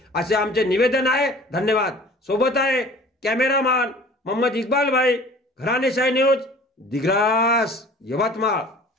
असे आमचे निवेदन आहे. धन्यवाद. सोबत आहे कॅमेरामॅन मोहम्मद इक्बाल भाई, घराणेशाही न्यूज, दिग्रस, यवतमाळ.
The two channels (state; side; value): normal; both; correlation 0.46